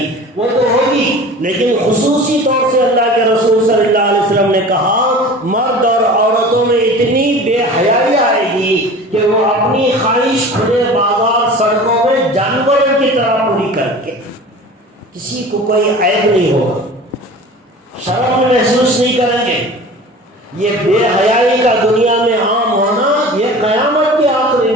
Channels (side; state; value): both; normal; correlation 0.39